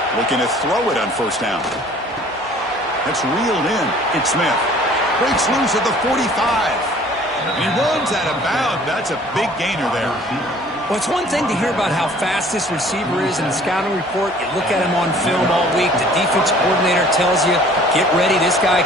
Looking to throw it on first down. That's reeled in. It's Smith. Breaks loose at the 45. He runs out of bounds. That's a big gainer there. Well, it's one thing to hear about how fast this receiver is in the scouting report. You look at him on film all week. The defense coordinator tells you, get ready, this guy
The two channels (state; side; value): normal; both; correlation 0.52